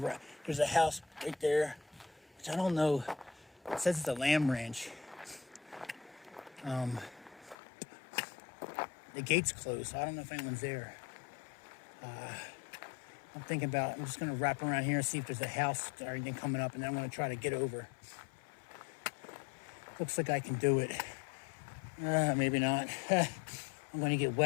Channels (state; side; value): drops out; right; at 7.6 s